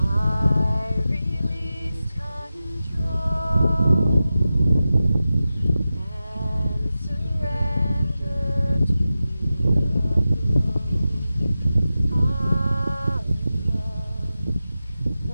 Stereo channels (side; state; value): both; inverted; correlation -0.93